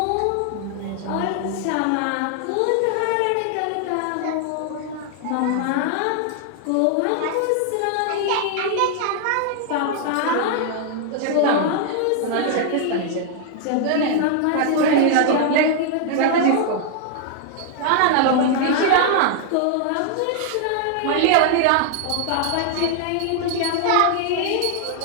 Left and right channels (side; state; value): both; different; correlation 0.00